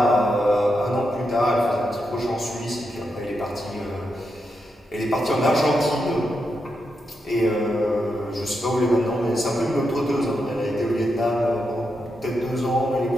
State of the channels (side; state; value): both; normal; correlation 0.85